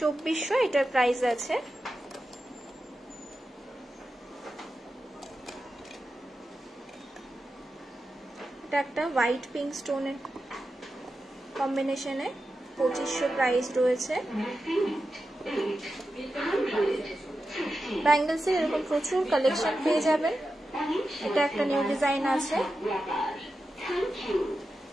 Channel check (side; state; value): both; normal; correlation 0.91